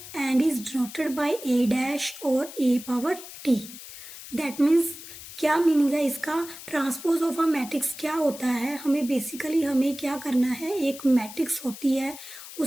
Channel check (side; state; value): left; noise; hiss, 14 dB below the sound